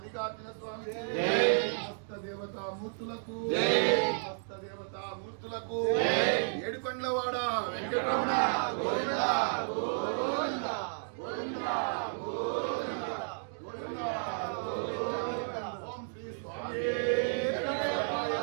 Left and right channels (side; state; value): left; silent; digital silence